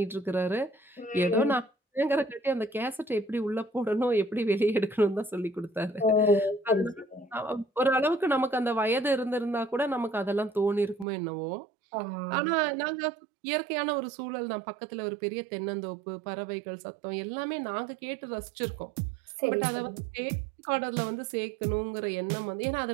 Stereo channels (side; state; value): left; drops out; at 11.1 s